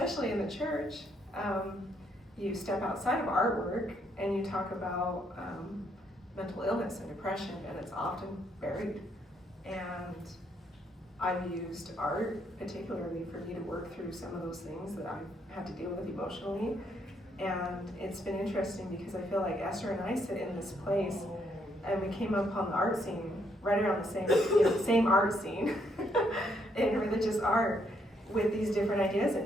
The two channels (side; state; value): both; normal; correlation 0.73